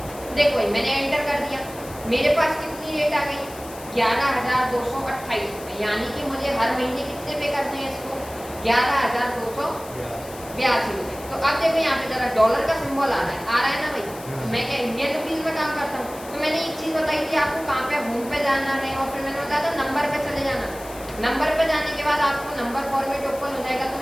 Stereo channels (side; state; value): left; noise; hiss, 17 dB below the sound